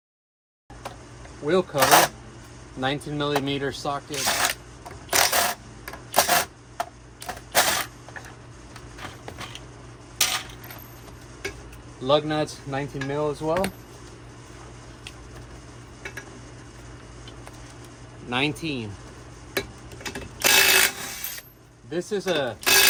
Wheel cover, 19mm socket. Lug nuts, 19mm as well. 19. This is a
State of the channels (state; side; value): identical; both; correlation 1.00